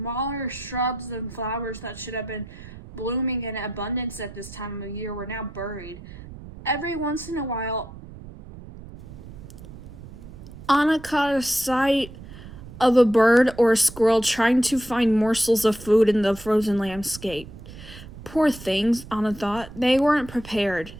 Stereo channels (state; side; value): noise; right; rumble, 15 dB below the sound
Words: shrubs and flowers that should have been blooming in abundance at this time of year were now buried. Every once in a while, Anna caught a sight of a bird or a squirrel trying to find morsels of food in the frozen landscape. Poor things, Anna thought. They weren't prepared.